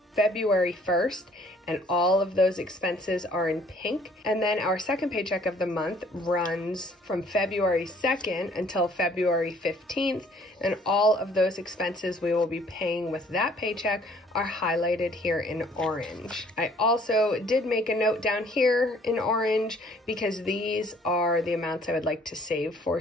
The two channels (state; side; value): normal; both; correlation 0.59